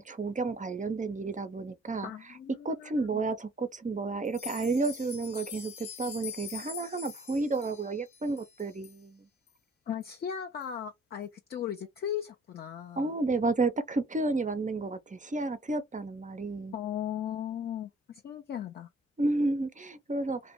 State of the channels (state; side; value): normal; both; correlation 0.56